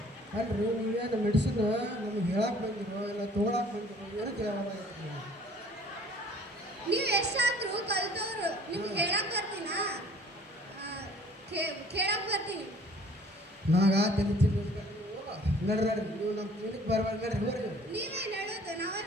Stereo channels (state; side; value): normal; both; correlation 0.53